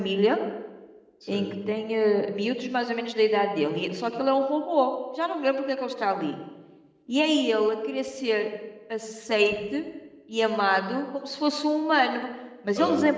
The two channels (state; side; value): identical; both; correlation 1.00